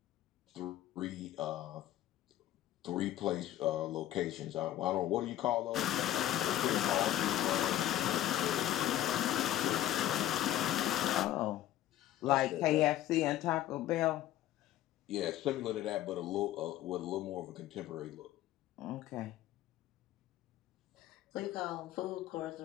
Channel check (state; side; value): quieter; right; 13.3 dB